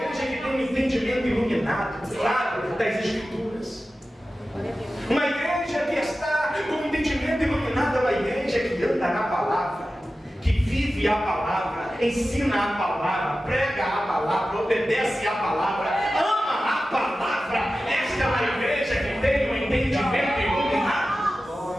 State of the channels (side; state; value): both; normal; correlation 0.94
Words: que tem um entendimento iluminado, claro, das Escrituras. Uma igreja que está com um entendimento iluminado é uma igreja que anda na palavra, que vive a palavra, ensina a palavra, prega a palavra, obedece a palavra, ama